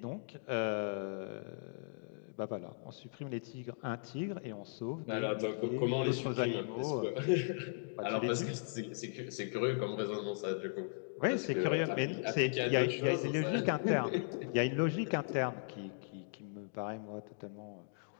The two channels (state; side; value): silent; right; digital silence